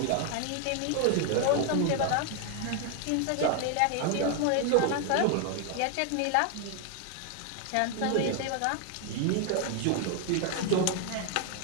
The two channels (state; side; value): different; both; correlation 0.00